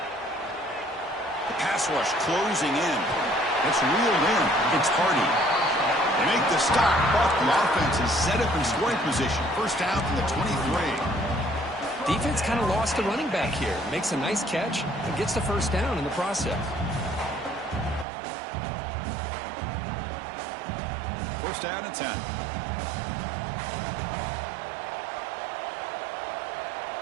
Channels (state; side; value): drops out; left; at 18.1 s